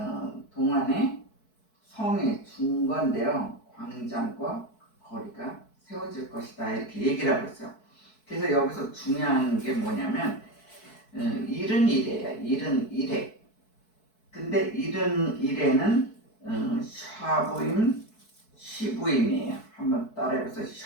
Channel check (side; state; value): right; late; 4.6 ms